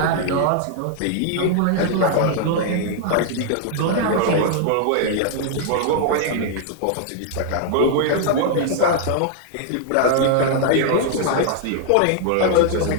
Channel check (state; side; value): different; both; correlation 0.00